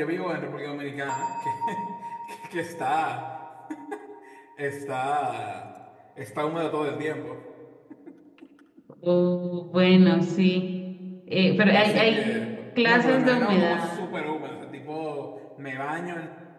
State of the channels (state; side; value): identical; both; correlation 1.00